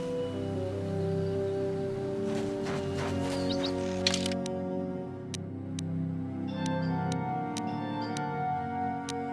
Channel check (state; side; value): identical; both; correlation 1.00